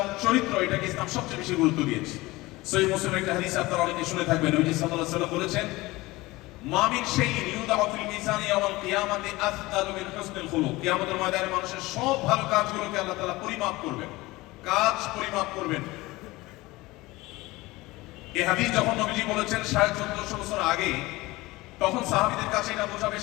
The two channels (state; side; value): quieter; right; 20.4 dB